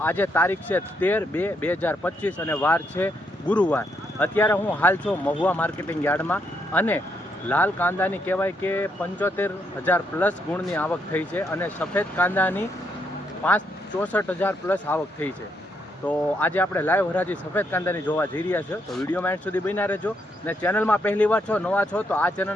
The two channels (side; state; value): both; normal; correlation 0.76